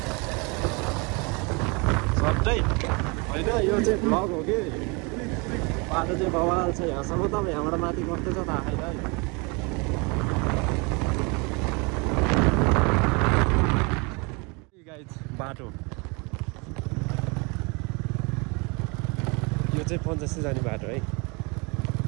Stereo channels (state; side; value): quieter; left; 29.9 dB